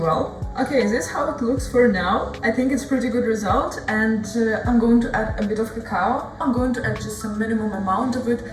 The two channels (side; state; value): both; identical; correlation 1.00